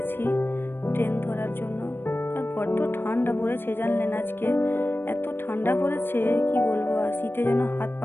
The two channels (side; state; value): right; late; 0.099 ms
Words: ট্রেন ধরার জন্য। আর বড্ড ঠান্ডা পড়েছে জানলেন, আজকে এত ঠান্ডা পড়েছে কি বলবো, আর শীতে যেন হাত